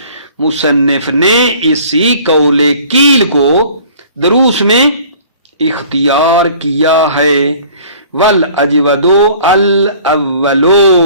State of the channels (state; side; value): inverted; both; correlation -0.50